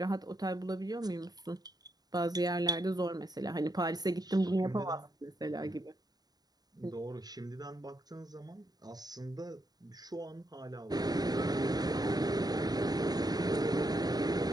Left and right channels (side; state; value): left; late; 0.19 ms